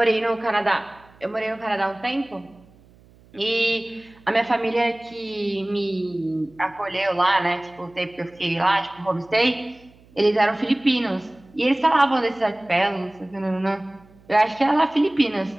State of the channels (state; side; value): noise; right; hum, 27 dB below the sound